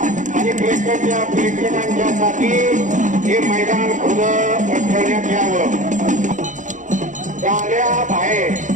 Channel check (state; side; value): late; left; 0.36 ms